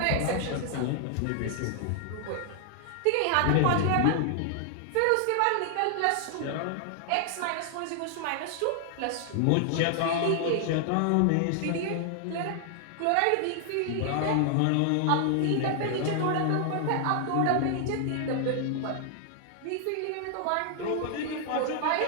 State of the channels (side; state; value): both; different; correlation 0.00